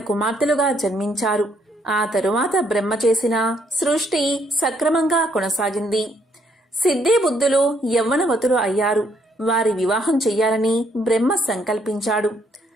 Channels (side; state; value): both; normal; correlation 0.70